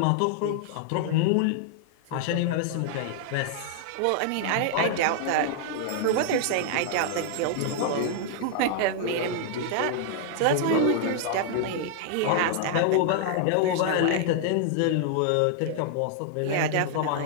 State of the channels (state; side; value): different; both; correlation -0.01